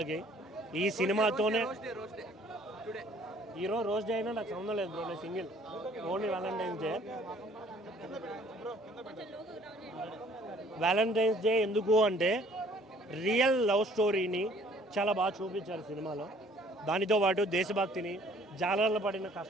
ఈ సినిమాతోనే హీరో రోజ్ డే అయినా నాకు సంబంధం లేదు బ్రో, నేను single, only Valentine's day. Valentine's day ఎందుకు అంటే రియల్ లవ్ స్టోరీని చాలా బాగా చూపించారు సినిమాలో. దానితో పాటు దేశభక్తిని, జాలర్లు పడిన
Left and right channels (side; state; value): both; normal; correlation 0.58